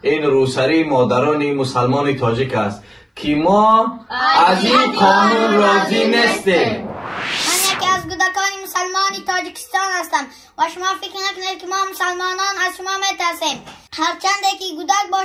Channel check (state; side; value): identical; both; correlation 1.00